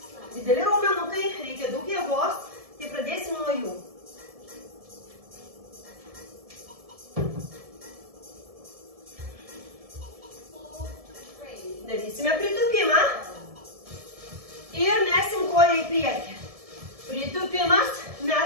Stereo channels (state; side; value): late; left; 1.7 ms